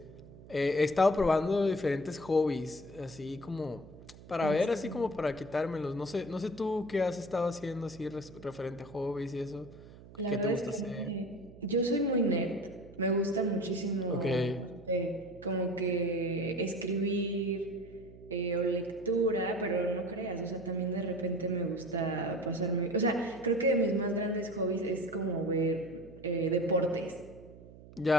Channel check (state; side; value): noise; right; hum, 19 dB below the sound